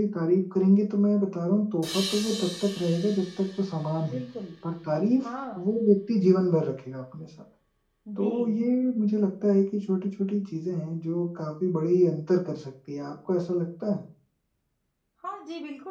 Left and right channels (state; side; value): identical; both; correlation 1.00